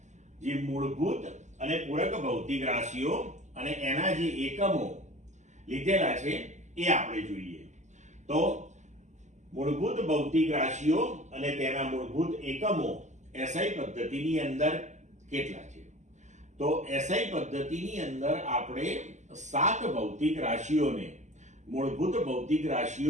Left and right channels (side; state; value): left; late; 0.34 ms